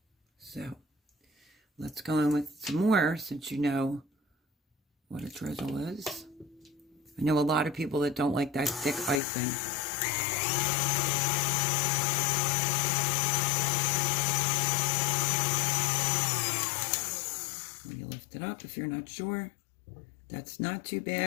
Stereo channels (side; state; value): right; drops out; at 9.2 s